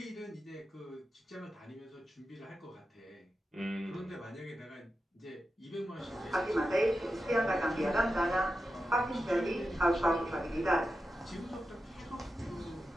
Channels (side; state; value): both; normal; correlation 0.90